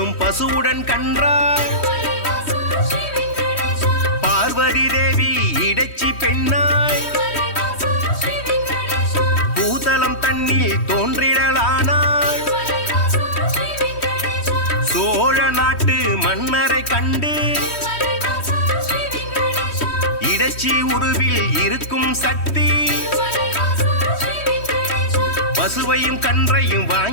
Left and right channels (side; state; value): right; late; 3.1 ms